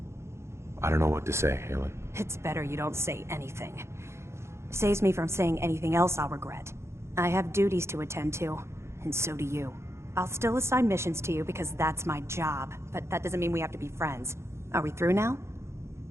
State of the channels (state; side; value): late; left; 0.13 ms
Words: I don't know what to say, Halen. It's better you don't say anything. Saves me from saying anything else I'll regret. I have duties to attend to, and so do you. I'll still assign missions to you because that's my job, but that doesn't mean we have to be friends. Are we through now?